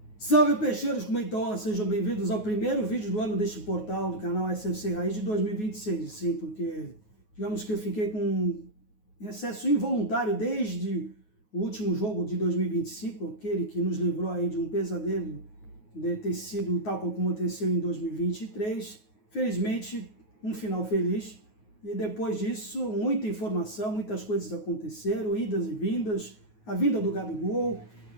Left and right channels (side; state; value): right; late; 9.4 ms